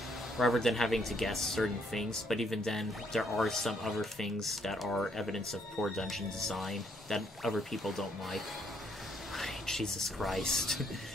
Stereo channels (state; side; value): normal; both; correlation 0.70